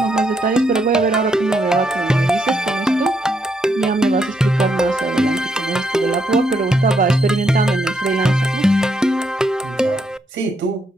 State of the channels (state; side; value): normal; both; correlation 0.77